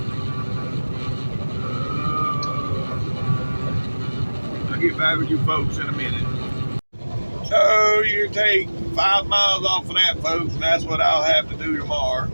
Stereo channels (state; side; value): inverted; both; correlation -1.00